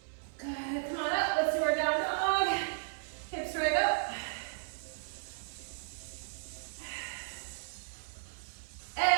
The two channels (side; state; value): left; silent; 55 dB below the other